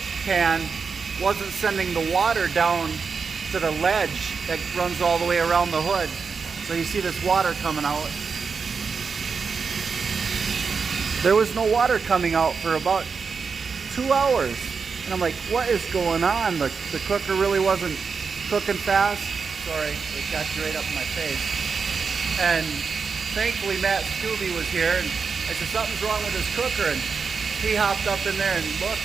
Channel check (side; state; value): left; quieter; 5.4 dB